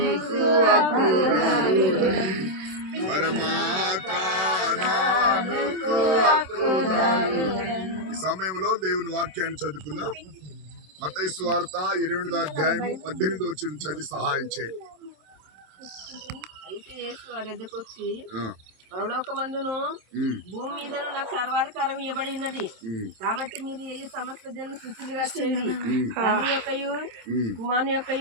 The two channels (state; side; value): late; left; 27 ms